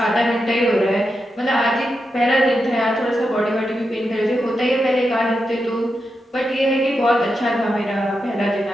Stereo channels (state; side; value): normal; both; correlation 0.87